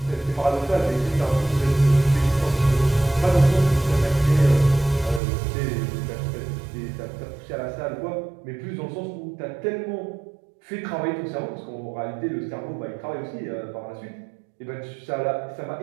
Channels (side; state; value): left; drops out; at 5.2 s